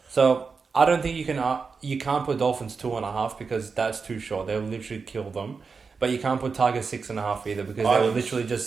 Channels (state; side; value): quieter; left; 5.0 dB